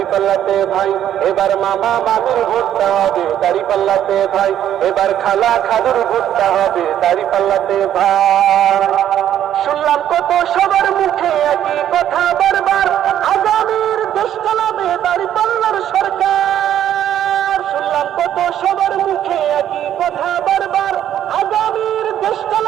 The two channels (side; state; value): left; quieter; 10.9 dB